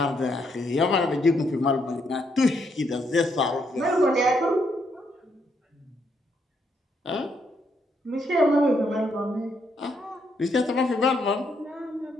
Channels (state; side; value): normal; both; correlation 0.75